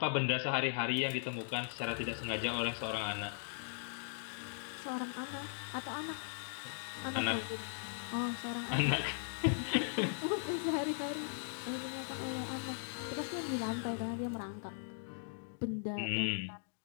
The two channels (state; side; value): silent; right; digital silence